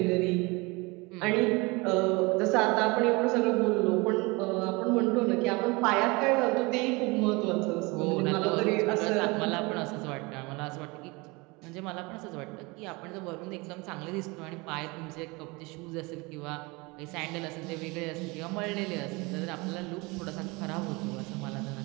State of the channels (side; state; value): left; quieter; 25.8 dB